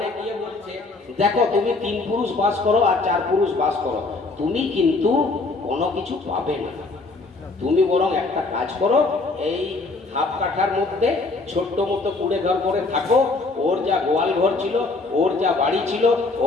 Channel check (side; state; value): right; quieter; 3.6 dB